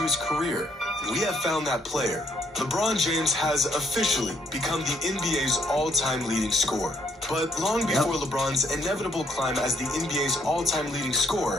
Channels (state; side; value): normal; both; correlation 0.69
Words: his career. And we have found that player. LeBron James has officially become the NBA's all-time leading scorer. But long before LeBron's inevitable climb as the NBA's all-time leading